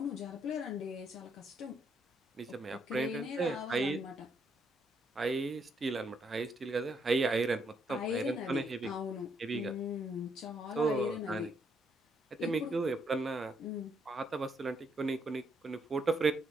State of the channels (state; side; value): normal; both; correlation 0.74